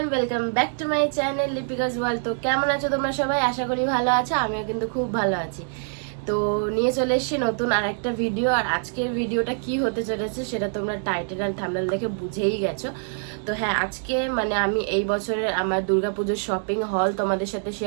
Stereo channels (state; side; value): silent; left; digital silence